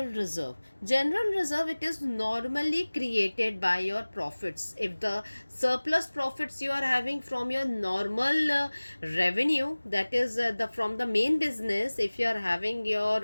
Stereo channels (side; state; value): both; inverted; correlation -1.00